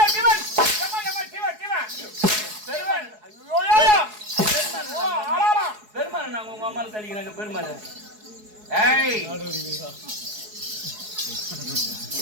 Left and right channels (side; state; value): left; late; 4.7 ms